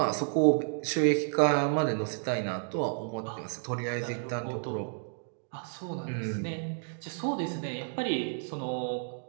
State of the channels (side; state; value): left; silent; digital silence